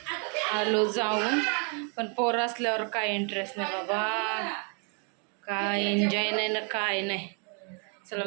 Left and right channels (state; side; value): quieter; left; 37.8 dB